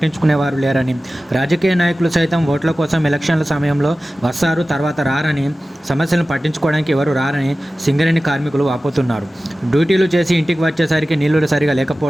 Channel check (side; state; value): both; normal; correlation 0.96